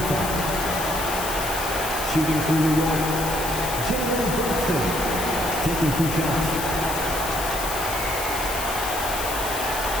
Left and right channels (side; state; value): left; noise; hiss, 6 dB below the sound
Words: foul. Shooting for New York, Jalen Brunson, taking 2 shots.